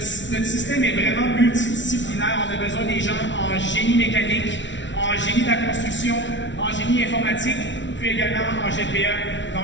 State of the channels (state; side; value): late; right; 0.54 ms